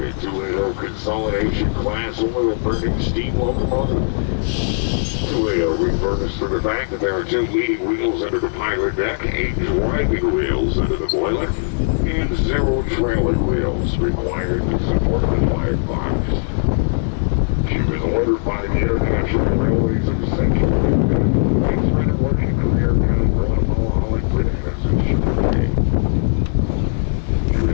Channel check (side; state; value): right; silent; 63 dB below the other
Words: 280 consolidation class oil-burning steam locomotive. 280 refers to the fact that there are 2 leading wheels under the pilot deck, 8 driving wheels under the boiler, and 0 trailing wheels required to support the firebox. She was ordered by the International Railways of Central America and spent her working career down in Guatemala hauling bananas and sugarcane. She